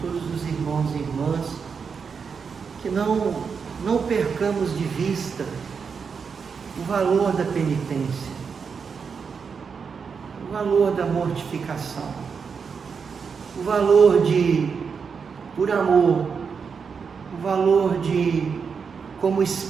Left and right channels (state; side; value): quieter; left; 5.9 dB